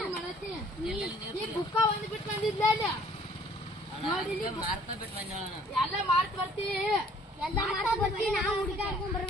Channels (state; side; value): normal; both; correlation 0.57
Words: ಮಾಡತ್ತಿ ನೀ ಬುಕ್ಕ ಒಂದು ಬಿಟ್ಟು ಬಂದಿದ್ಲ ಅಲ್ಲಿ ಮಾರ್ತಾ ಬಿಟ್ಟು ಬಂದ ಎಲ್ಲ ಮಾರ್ಕ್ ಬರ್ತಿ ಎಲ್ಲ ಮಾಡ್ತಾ ಬರ್ತೀವಿ ನಾವು ಹುಡುಗಾಡ್ಕೊಂಡ್